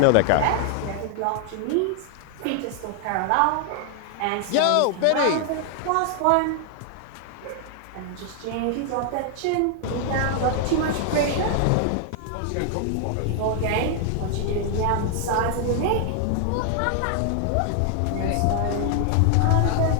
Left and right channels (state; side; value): different; both; correlation 0.00